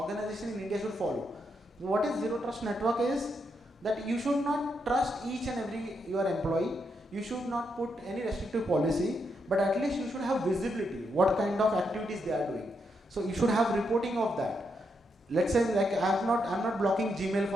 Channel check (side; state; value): both; normal; correlation 0.81